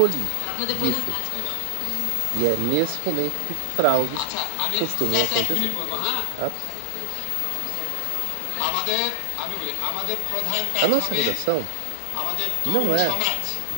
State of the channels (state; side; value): different; both; correlation 0.00